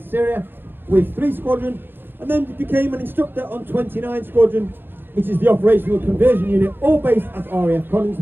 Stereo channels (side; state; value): left; late; 0.099 ms